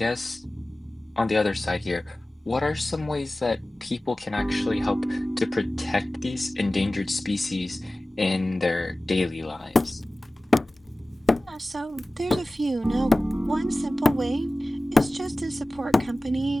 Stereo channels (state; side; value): normal; both; correlation 0.97